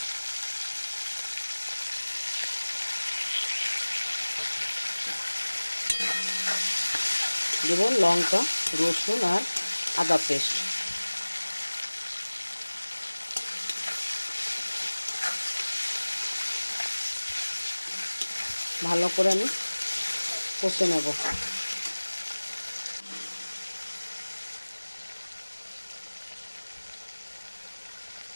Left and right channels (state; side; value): inverted; both; correlation -1.00